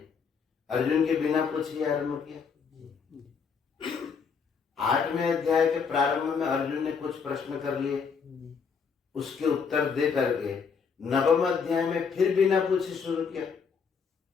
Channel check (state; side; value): quieter; right; 5.9 dB